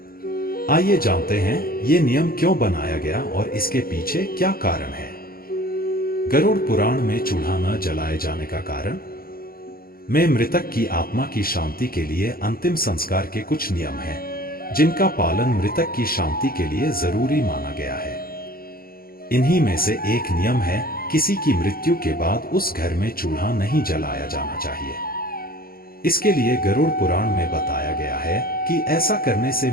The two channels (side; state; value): right; late; 0.43 ms